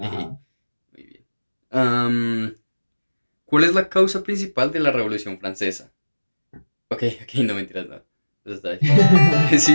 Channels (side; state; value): both; inverted; correlation -1.00